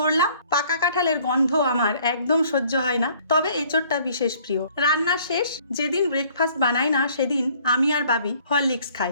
পাকা কাঁঠালের গন্ধ আমার একদম সহ্য হয় না, তবে এঁচড়টা বিশেষ প্রিয়। রান্না শেষ। যেদিন ব্রেকফাস্ট বানাই না সেদিন আমি আর বাবি হরলিক্স খাই,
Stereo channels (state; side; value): inverted; both; correlation -0.58